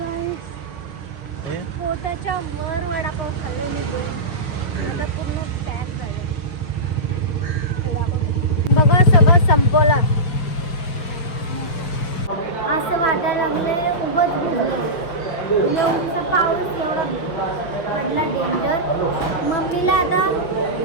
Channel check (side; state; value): right; late; 6.2 ms